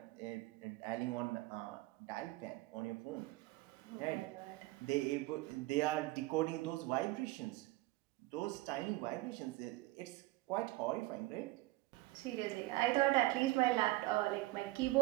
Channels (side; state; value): left; quieter; 19.1 dB